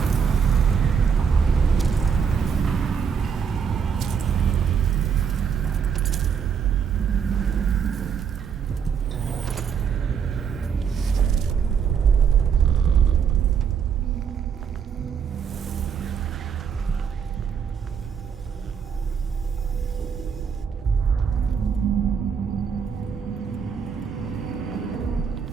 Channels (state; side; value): quieter; left; 6.9 dB